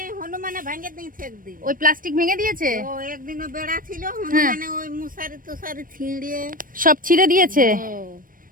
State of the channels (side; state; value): left; late; 0.40 ms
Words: হনুমানে ভাঙে দিয়েছে একদিন। ওই প্লাস্টিক ভেঙে দিয়েছে, ও একদিনও বেড়া ছিল, হনুমানে ওই মুসারি তুষারি ছিঁড়িয়ে সব ছিঁড়ে দিয়েছে।